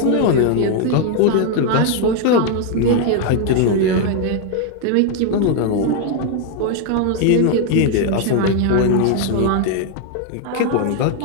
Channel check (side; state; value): both; different; correlation 0.00